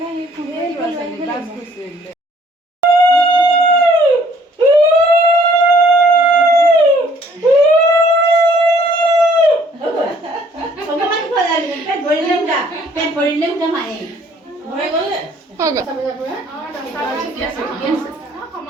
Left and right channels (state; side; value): normal; both; correlation 0.59